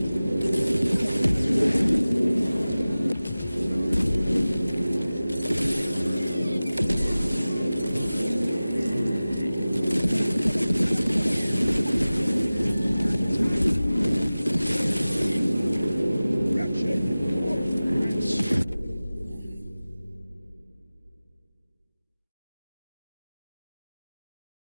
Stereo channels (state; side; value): inverted; both; correlation -0.97